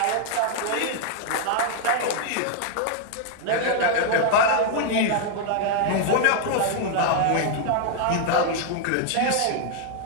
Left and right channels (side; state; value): both; different; correlation 0.00